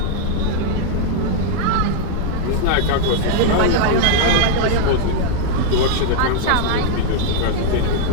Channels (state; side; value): different; both; correlation 0.00